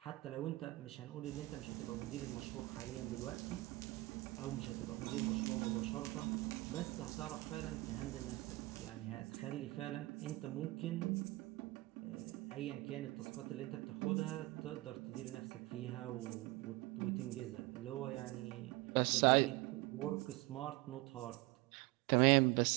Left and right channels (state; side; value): quieter; left; 21.4 dB